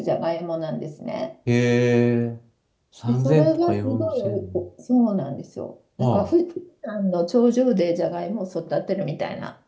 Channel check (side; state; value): both; identical; correlation 1.00